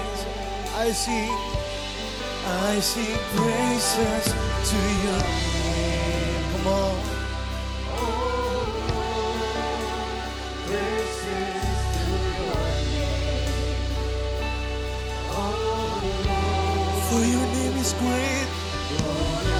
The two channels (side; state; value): both; identical; correlation 1.00